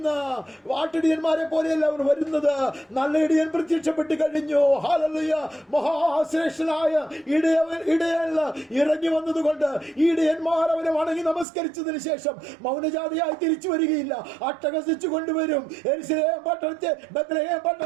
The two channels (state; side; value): drops out; left; at 11.5 s